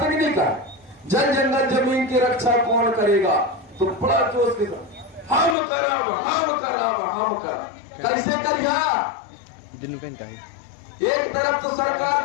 कि नहीं कहा? जन जंगल जमीन की रक्षा कौन करेगा? तो बड़ा जोश के साथ हम करब। कैसे करिया? एक तरफ तो सरकार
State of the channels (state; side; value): drops out; right; at 5.6 s